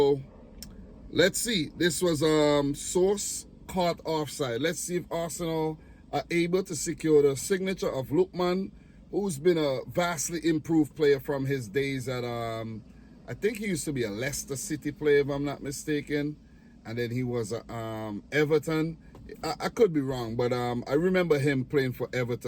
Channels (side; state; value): both; identical; correlation 1.00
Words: let's see. This was source caught offside. Let's see if Arsenal are able to secure the signature of Lookman, who's been a vastly improved player from his days at I think he used to be a Leicester City player, if I'm not mistaken, and then he was at Everton. I could be wrong, but I remember him playing for